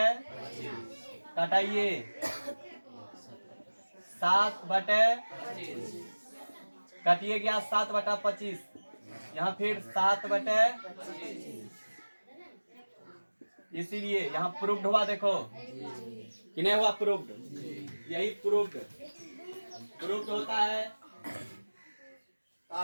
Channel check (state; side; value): inverted; both; correlation -1.00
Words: घटाइए 7 बटे कटिए गया 7 बटा 25, यहाँ फिर 7 बटे, इसीलिए यहाँ प्रूव्ड हुआ। देखो कि नहीं हुआ प्रूव्ड, यही प्रूव्ड होता है। तो